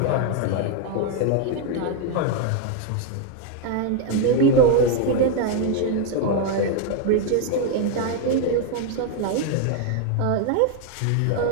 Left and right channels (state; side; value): different; both; correlation 0.01